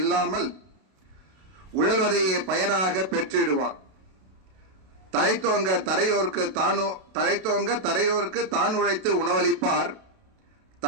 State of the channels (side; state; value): left; late; 32 ms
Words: உழல்வதையே பயனாக பெற்றிடுவார். தழைத்தோங்க தரையோருக்கு தான் உழைத்து